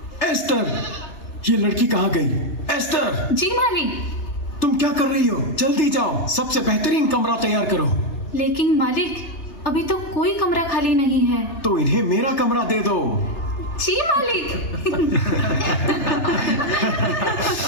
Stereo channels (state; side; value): late; right; 3.3 ms